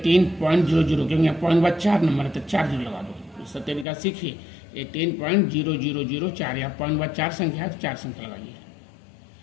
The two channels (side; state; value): right; drops out; at 3.9 s